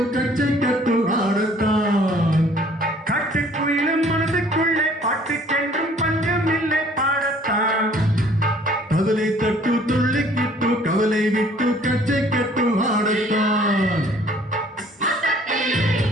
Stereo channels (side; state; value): both; normal; correlation 0.56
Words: கச்சை கட்டு ஆடத்தான். காட்டுக்குயிலும் மனசுக்குள்ளே பாட்டுக்கென்றும் பஞ்சம் இல்லை பாடத்தான். கவலை தட்டு துள்ளி கேட்டு கவலை விட்டு கச்சை கட்டு ஆடத்தான்.